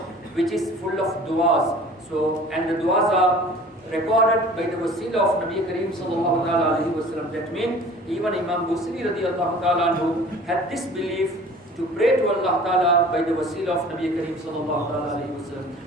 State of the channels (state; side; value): normal; both; correlation 0.46